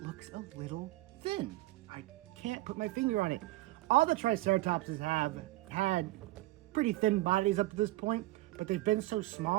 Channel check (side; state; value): left; quieter; 18.6 dB